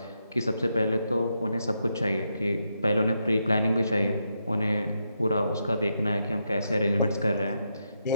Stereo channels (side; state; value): both; inverted; correlation -0.83